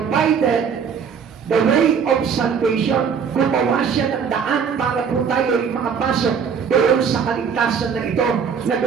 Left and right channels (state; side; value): quieter; left; 6.7 dB